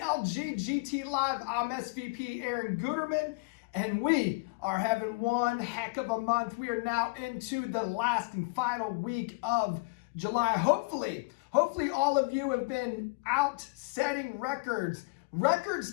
Live. I'm SVP Aaron Guterman, and we are having one heck of a month. We are now into the last and final week of July. Hopefully all of you have been out setting records. Records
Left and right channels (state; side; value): quieter; right; 28.6 dB